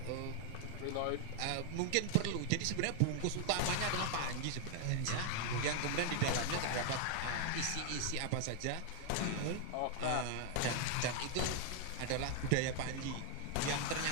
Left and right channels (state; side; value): different; both; correlation 0.00